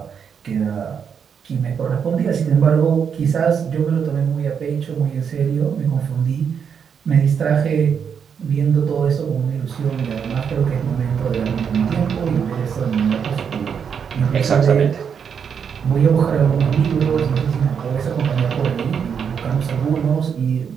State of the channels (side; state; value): left; quieter; 7.1 dB